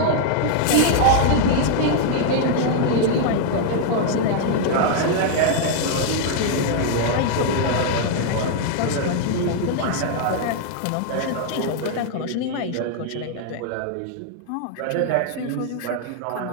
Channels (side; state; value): both; different; correlation 0.00